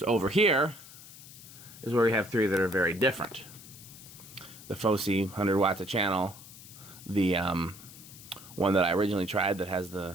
over here is where we have 3 that are very different. The Fosi 100 watts a channel, the one that I originally tried that has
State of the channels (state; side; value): noise; left; hiss, 17 dB below the sound